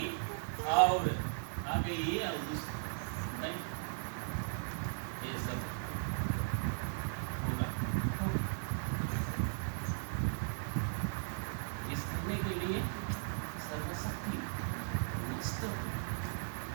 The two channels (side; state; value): left; silent; digital silence